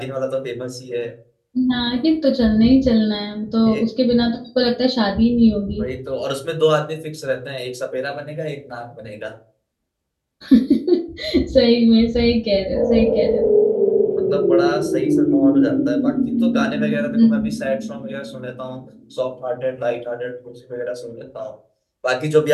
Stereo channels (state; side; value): identical; both; correlation 1.00